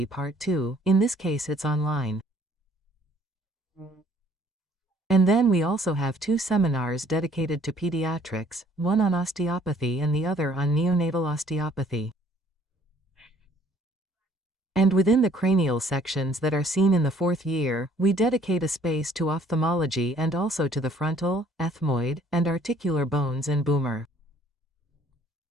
Part 2, in this case it's online. And then we also have 2 seminars dedicated to pediatrics, one on osteopathy and the other on neonatal osteopathy. And within the cranial sections that are seen in the 4th year, we dedicate a space to ophthalmology and also to the frontal, ethmoid, and articular bones and boomer.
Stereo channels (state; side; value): normal; both; correlation 0.59